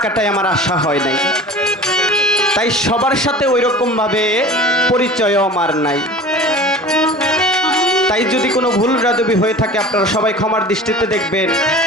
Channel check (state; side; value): normal; both; correlation 0.39